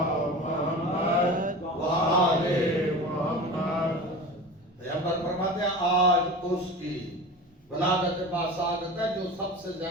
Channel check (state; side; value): normal; both; correlation 0.32